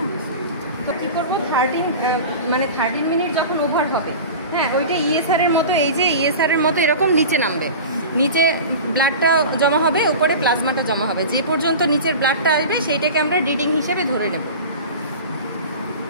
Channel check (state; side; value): inverted; both; correlation -0.33